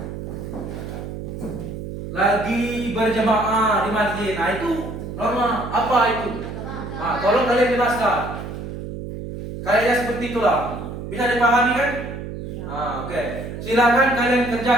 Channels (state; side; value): noise; right; hum, 8 dB below the sound